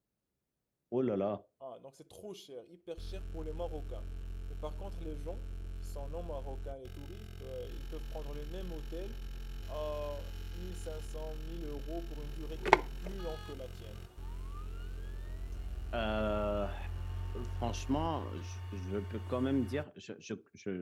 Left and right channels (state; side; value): identical; both; correlation 1.00